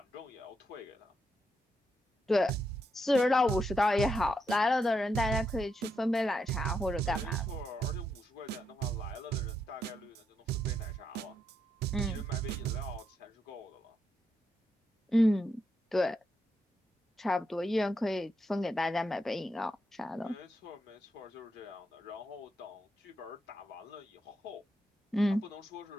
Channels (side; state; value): both; normal; correlation 0.82